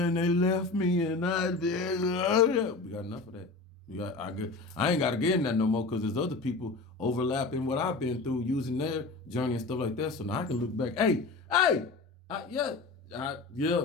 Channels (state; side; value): quieter; right; 3.8 dB